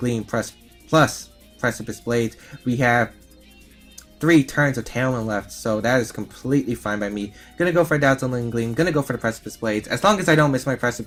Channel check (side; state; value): both; identical; correlation 1.00